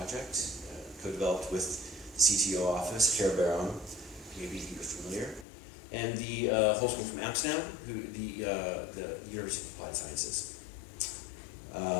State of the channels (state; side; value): drops out; right; at 5.5 s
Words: co-developed with the CTO office, Care Baron, maybe you're familiar, and the whole school from Amsterdam, the University of Applied Sciences.